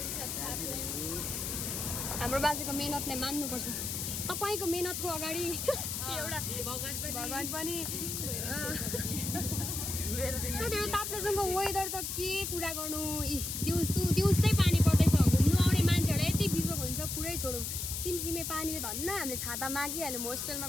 हाम्रो बाजेको मेहनतलाई मान्नुपर्छ तपाईँको मेहनतको अगाडि एउटा भगवान पनि ताप्लेजुङको वेदर त के कुरा गर्नु दिउँसै पानी पर्दैछ घुम्नु आउने मान्छेहरूलाई यति बिजोग हुन्छ पुरै छोडौँ सिमसिमे पानीले धन्न हामीले छाता मागिहाल्यौँ होस्टेलमा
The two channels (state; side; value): noise; left; hiss, 3 dB below the sound